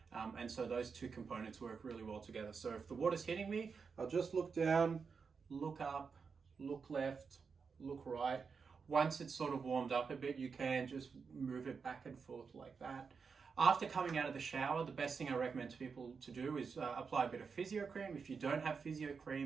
And so those two components work really well together. So if the water's hitting me, I'll just look down, look up, look left, look right. Once it's sort of warmed up a bit, you can just move it back and forth like that. After coming out of the shower, the best thing I recommend to people to do is apply a bit of physio cream. If you don't have physio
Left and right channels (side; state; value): left; quieter; 5.5 dB